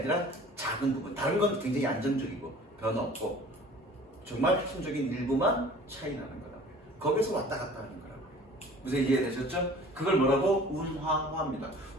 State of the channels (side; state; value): both; normal; correlation 0.47